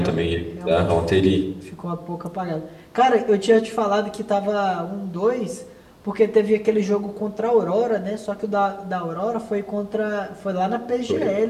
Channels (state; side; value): identical; both; correlation 1.00